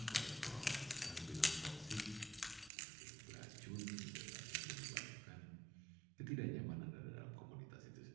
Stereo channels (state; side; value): drops out; left; at 2.7 s